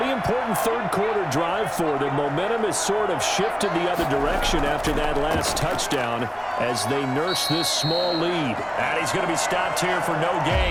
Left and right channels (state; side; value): identical; both; correlation 1.00